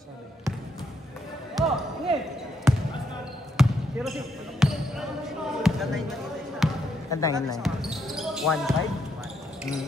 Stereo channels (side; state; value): both; normal; correlation 0.76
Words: Sorry. Oh, okay. Zero six. Tantayin na. 1-5?